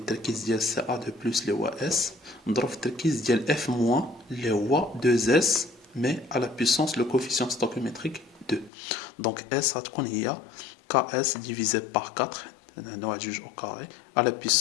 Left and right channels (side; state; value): right; drops out; at 8.7 s